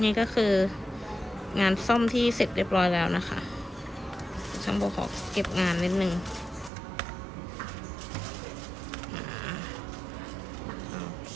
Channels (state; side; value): drops out; left; at 6.7 s